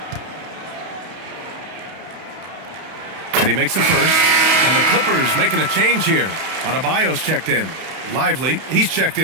And he makes a first. And the Clippers making a change here. Adebayo's checked in. Lively, he's checked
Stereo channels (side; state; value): left; late; 31 ms